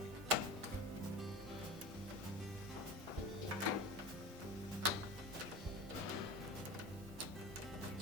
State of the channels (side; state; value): both; normal; correlation 0.29